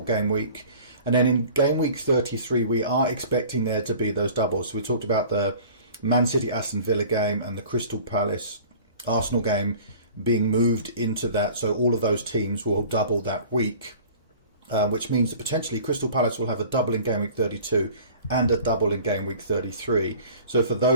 game week? And then in game week 33, we are expecting there to be those doubles. So we talked about the Man City Aston Villa game and the Crystal Palace Arsenal game being moved into that, so all of those teams will double that week. Which means that potentially Crystal Palace will have a double in game week 32 and a double in game week 33. So for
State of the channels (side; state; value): both; inverted; correlation -0.45